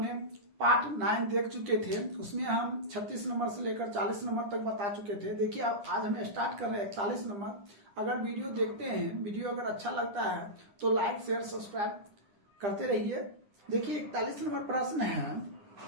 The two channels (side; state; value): left; late; 9.8 ms